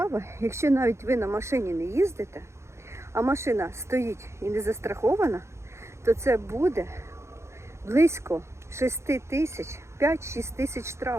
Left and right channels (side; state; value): left; late; 0.13 ms